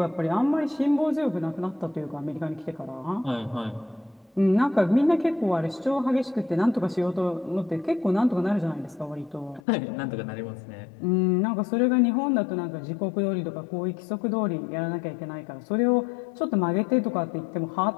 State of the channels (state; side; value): drops out; right; at 9.6 s